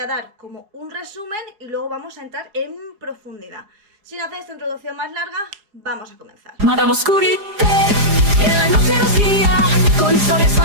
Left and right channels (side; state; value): left; late; 4.9 ms